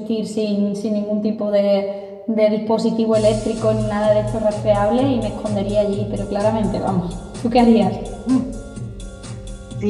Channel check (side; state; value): both; identical; correlation 1.00